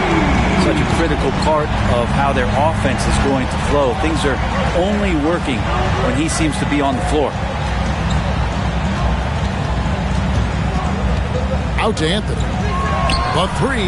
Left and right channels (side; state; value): both; identical; correlation 1.00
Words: Such a critical part of how their offense is going to flow. Things are only working when he seems to be on the floor. Out to Anthony. The